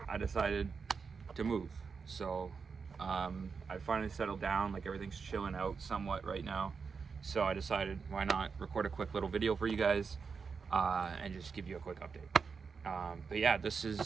I decided to move, so I finally settled down. Like, everything's chilling out somewhat right now, so I decided, why not record a quick little video for you guys and just give you a quick update. But yeah, this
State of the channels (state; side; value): quieter; left; 5.4 dB